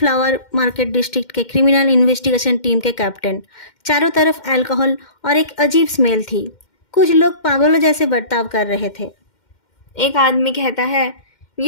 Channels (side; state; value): right; late; 2.1 ms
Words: मार्केट डिस्ट्रिक्ट के क्रिमिनल इन्वेस्टिगेशन टीम के कैप्टन। चारों तरफ अल्कोहल और एक अजीब स्मेल थी। कुछ लोग पागलों जैसे बर्ताव कर रहे थे। एक आदमी कहता है,